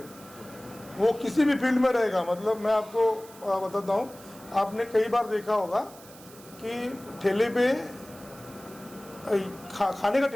वो किसी भी फील्ड में रहेगा। मतलब मैं आपको बताता हूँ, आपने कई बार देखा होगा कि ठेले पे खाने का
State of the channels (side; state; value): right; noise; hiss, 21 dB below the sound